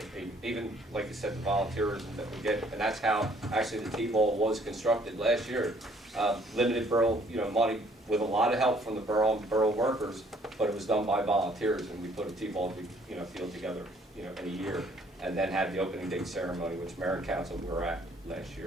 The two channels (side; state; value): both; normal; correlation 0.61